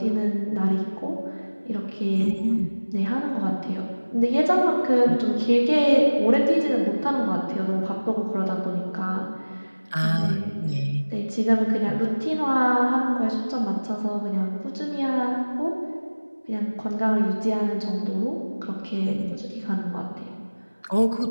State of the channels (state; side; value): inverted; both; correlation -1.00